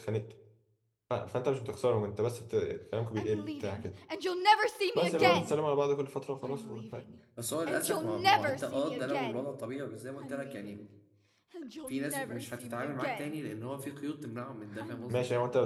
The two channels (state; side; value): identical; both; correlation 1.00